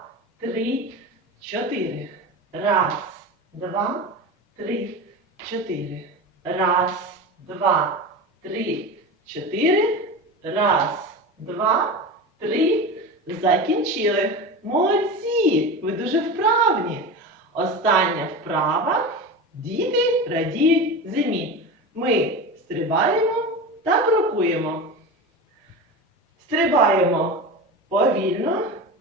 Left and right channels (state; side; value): normal; both; correlation 0.27